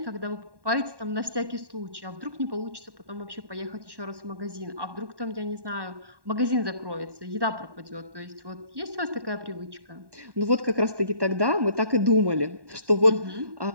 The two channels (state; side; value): late; left; 1.1 ms